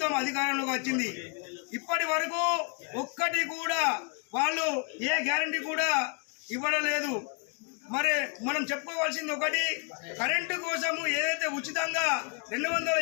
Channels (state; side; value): quieter; right; 35.6 dB